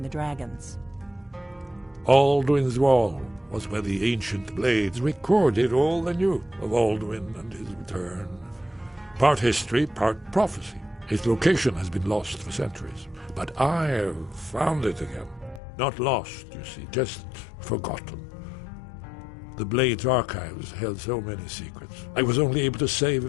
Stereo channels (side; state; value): right; drops out; at 15.6 s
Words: the dragons? Alduin's Wall was where the ancient Blades recorded all they knew of Alduin and his return. Part history, part prophecy. Its location has been lost for centuries, but I have found it again. Not lost, you see, just forgotten. The Blades' archives held so many secrets. I was only able to save